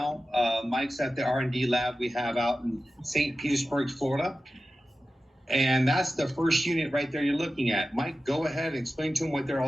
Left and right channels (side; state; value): both; normal; correlation 0.93